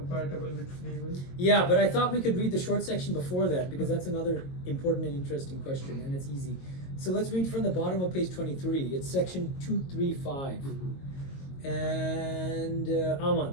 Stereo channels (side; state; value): right; late; 22 ms